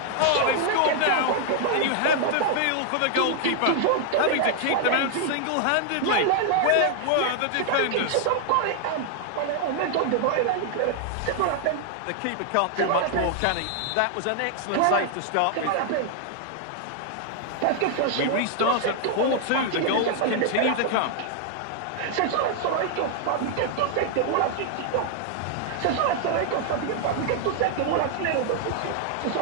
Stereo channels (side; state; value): both; different; correlation 0.00